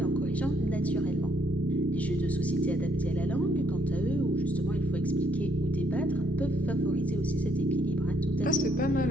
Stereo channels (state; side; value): normal; both; correlation 0.70